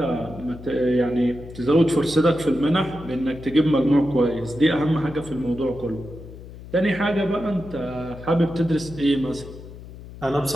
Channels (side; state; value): left; noise; hum, 15 dB below the sound